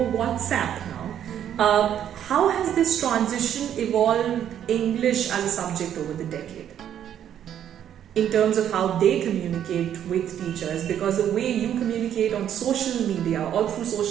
WhatsApp now. How has this transition evolved English as a subject over the decade? In terms of how they communicate with teachers, because the way you communicate on social media or through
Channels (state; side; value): quieter; left; 10.0 dB